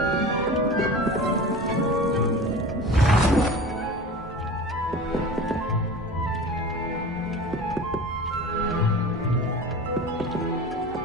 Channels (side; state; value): both; normal; correlation 0.36